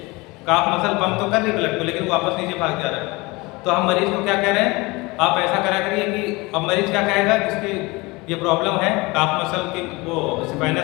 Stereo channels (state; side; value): quieter; right; 23.9 dB